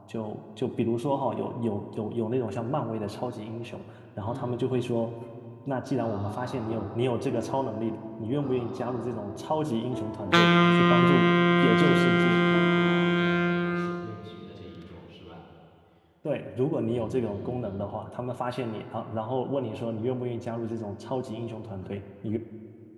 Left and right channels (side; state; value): both; identical; correlation 1.00